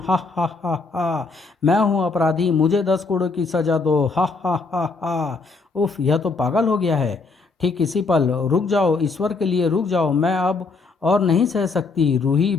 हा हा हा, मैं हूँ अपराधी। मुझे 10 करोड़ की सजा दो। हा हा हा हा। उफ, यह तो पागल हो गया है। ठीक इसी पल, रुक जाओ, ईश्वर के लिए रुक जाओ। मैं अब और नहीं सह सकती। रूही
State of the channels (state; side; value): quieter; right; 4.1 dB